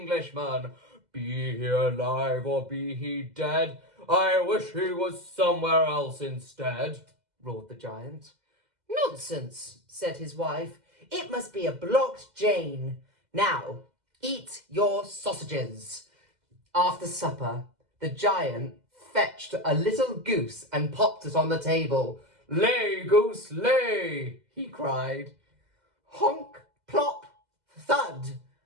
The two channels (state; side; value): late; left; 2.0 ms